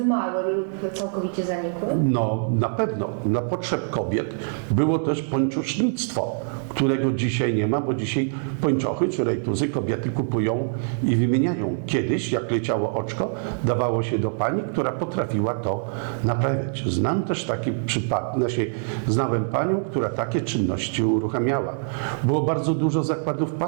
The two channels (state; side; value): silent; left; digital silence